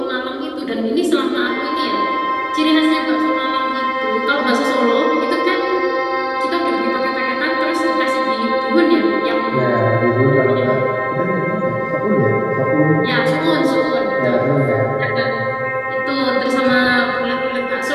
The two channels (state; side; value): identical; both; correlation 1.00